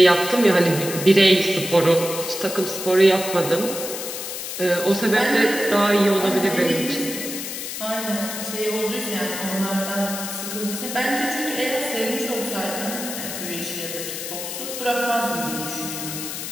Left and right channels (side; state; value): left; noise; hiss, 6 dB below the sound